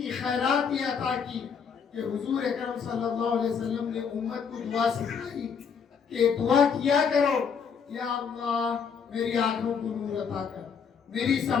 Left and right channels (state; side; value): quieter; right; 6.4 dB